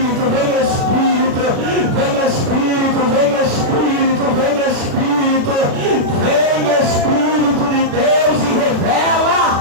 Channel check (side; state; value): left; late; 36 ms